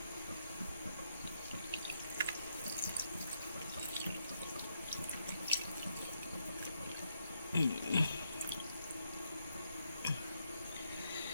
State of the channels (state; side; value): inverted; both; correlation -0.79